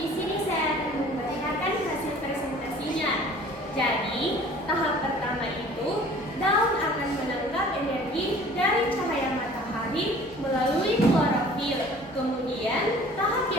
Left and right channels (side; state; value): both; normal; correlation 0.49